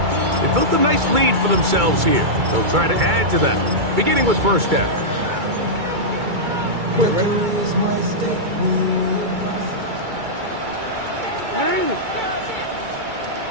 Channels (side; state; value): left; late; 2.2 ms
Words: They built a nice lead for themselves here. They'll try to add to that, beginning with first down. Quick, ready?